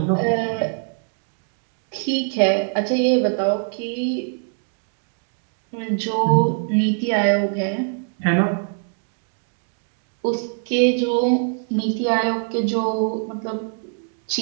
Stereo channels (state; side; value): silent; left; 56 dB below the other